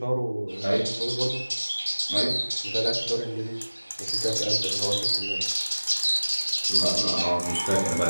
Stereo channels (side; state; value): both; inverted; correlation -1.00